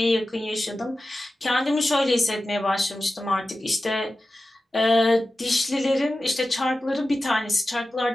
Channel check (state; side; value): normal; both; correlation 0.94